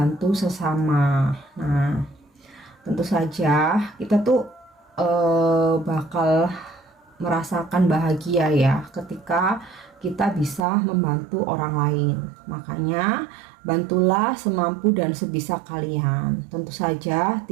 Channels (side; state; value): left; drops out; at 10.6 s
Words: sesama. Nah, tentu saja kita tuh bakal merasakan bahagia ya ketika kita bisa membantu orang lain. Makanya bantulah semampu dan sebisa kalian. Tentu saja